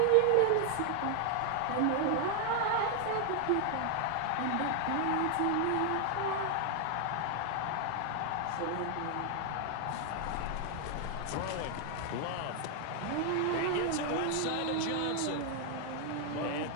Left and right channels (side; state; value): both; different; correlation 0.00